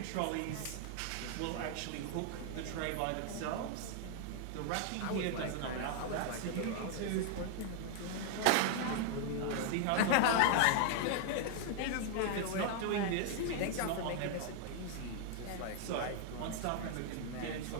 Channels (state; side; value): different; both; correlation 0.00